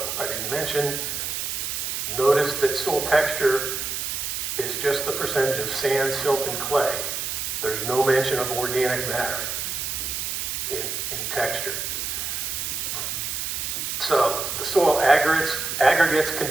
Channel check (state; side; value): noise; right; hiss, 3 dB below the sound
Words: I didn't mention, notice that soil texture is just the percentage of sand, silt, and clay. There's no mention of organic matter in texture. So the soil aggregates can